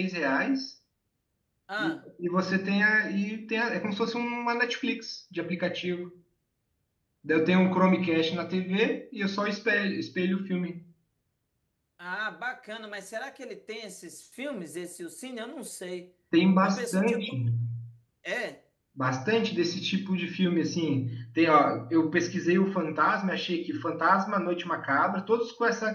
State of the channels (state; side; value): identical; both; correlation 1.00